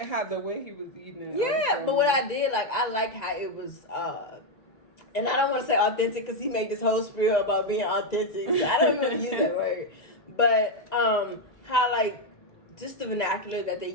had the way he was eating it. Yeah, but what I did, like, I liked how it was, and I don't want to say authentic because he made this whole spiel about being authentic. So I don't even use that word. But how, like, just the vernacular that they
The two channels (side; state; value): right; late; 1.9 ms